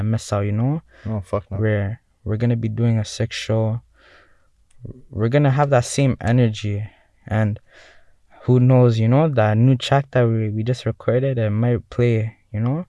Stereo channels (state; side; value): identical; both; correlation 1.00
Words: miss out. You know, Oh fuck no. we're gonna be doing a sick show. We're gonna have that same energy, and who knows, you know, that new track that we just recorded, it might play, you know,